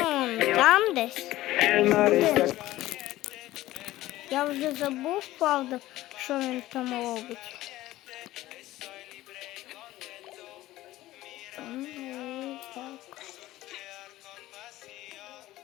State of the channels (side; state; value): right; quieter; 16.1 dB